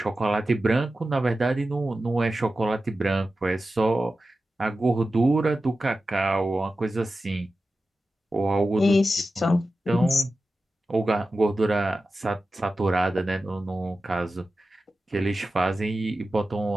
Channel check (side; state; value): both; normal; correlation 0.93